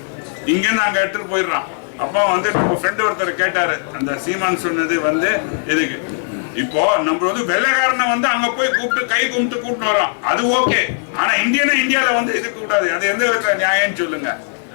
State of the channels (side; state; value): right; silent; digital silence